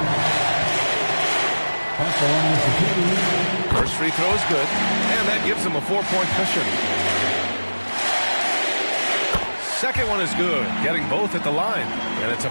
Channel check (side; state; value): both; inverted; correlation -1.00